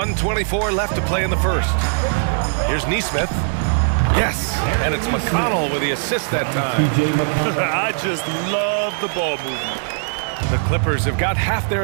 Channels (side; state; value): left; silent; digital silence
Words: left to play in the first. Here's Neesmith. Yes, and it's McConnell with the assist that time. I just love the ball movement. The Clippers have got half their